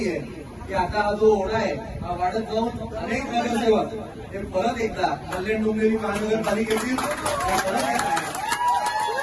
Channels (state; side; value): identical; both; correlation 1.00